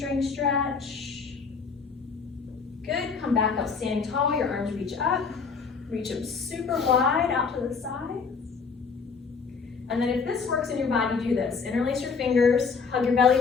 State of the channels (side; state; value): right; quieter; 5.3 dB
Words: stretch. Good, come back up standing tall, your arms reach up. Reach them super wide out to the sides. And then if this works in your body, do this. Interlace your fingers, hug your belly